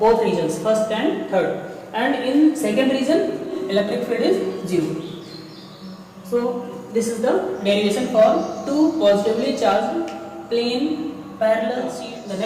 both regions, first and third. And in second region, electric field is 0. So this is the derivation for two positively charged plane parallel sheets. The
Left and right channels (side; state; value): both; identical; correlation 1.00